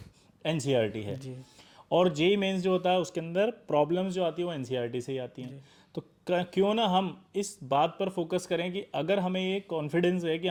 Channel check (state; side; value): identical; both; correlation 1.00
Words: एनसीईआरटी है, और जेई मेंस जो होता है उसके अंदर प्रॉब्लम्स जो आती है वो एनसीईआरटी से ही आती हैं। तो क्यों ना हम इस बात पर फोकस करें कि अगर हमें ये कॉन्फिडेंस है कि